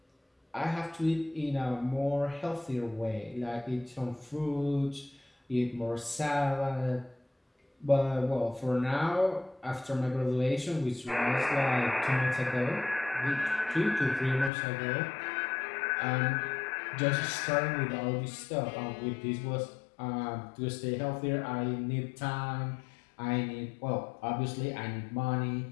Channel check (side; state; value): right; drops out; at 14.5 s